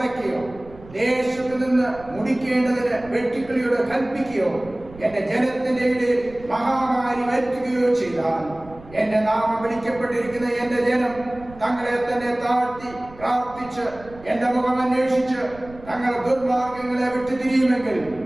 ദേശത്ത് നിന്ന് മുടിക്കേണ്ടതിന് വെട്ടിക്കിളിയോട് കൽപ്പിക്കുകയോ എന്റെ ജനത്തിന്റെ ഇടയിൽ മഹാമാരി വരുത്തുകയോ ചെയ്താൽ എന്റെ നാമം വിളിക്കപ്പെട്ടിരിക്കുന്ന എന്റെ ജനം തങ്ങളെ തന്നെ താഴ്ത്തി പ്രാർത്ഥിച്ച് എന്റെ മുഖം അന്വേഷിച്ച് തങ്ങളുടെ ദുർമാർഗങ്ങളെ വിട്ടുതിരിയുമെങ്കിൽ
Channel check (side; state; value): right; noise; rumble, 20 dB below the sound